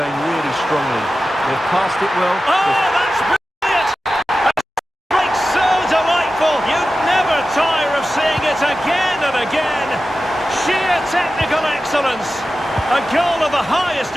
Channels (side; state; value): both; normal; correlation 0.94